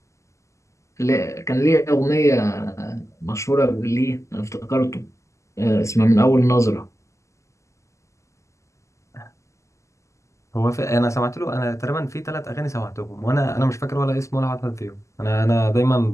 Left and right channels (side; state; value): right; late; 0.14 ms